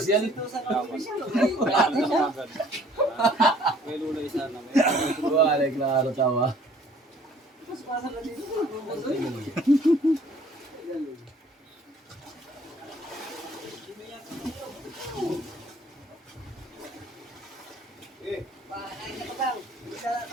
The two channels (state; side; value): normal; both; correlation 0.56